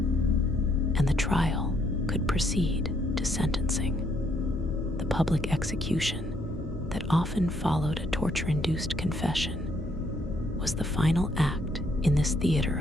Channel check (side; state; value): left; noise; hum, 11 dB below the sound